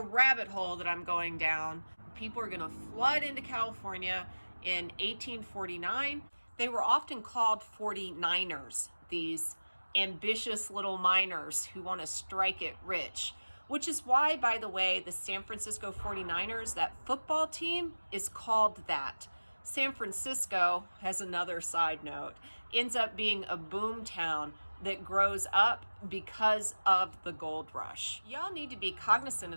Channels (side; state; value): both; inverted; correlation -1.00